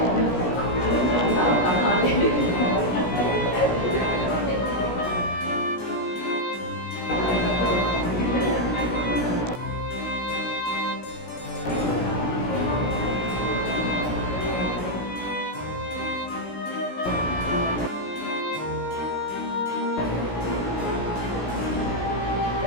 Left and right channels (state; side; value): late; right; 17 ms